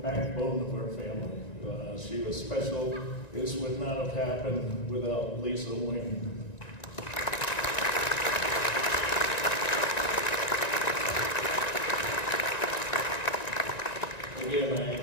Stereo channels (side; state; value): right; late; 1.9 ms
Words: of our family. She was special. This would not have happened without Lisa Wing. Again,